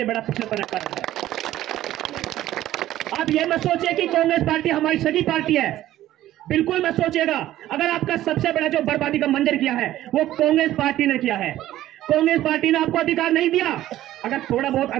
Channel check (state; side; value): quieter; left; 13.9 dB